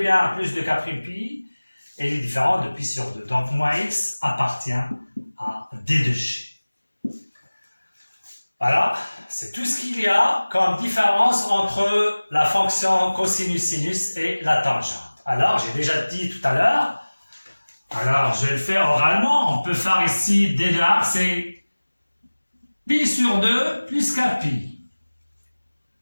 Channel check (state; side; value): inverted; both; correlation -1.00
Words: plus de k' pi. Et il est différent de pi sur 2. Donc, moins x appartient à D de G. Voilà, c'est tout ce qu'il y a comme différence entre la fonction cosinus-sinus et la tangente. Alors, j'ai déjà dit tout à l'heure, alors je vais le faire oralement, on peut faire ici d de R, c'est pi sur 2 plus k pi.